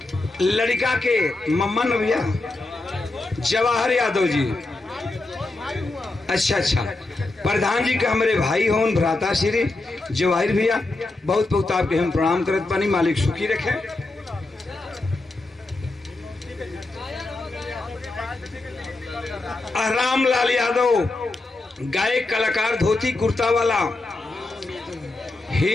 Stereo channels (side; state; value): right; quieter; 3.0 dB